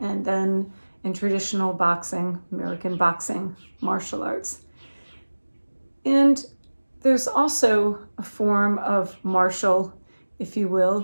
and then in traditional boxing, American boxing, martial arts. And there's also a form of martial, if you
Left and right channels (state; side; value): inverted; both; correlation -1.00